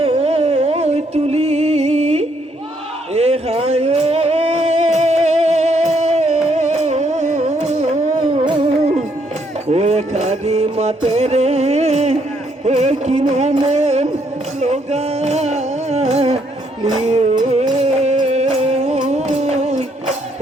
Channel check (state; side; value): normal; both; correlation 0.71